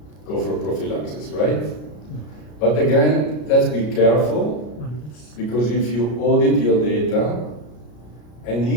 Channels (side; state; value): right; late; 33 ms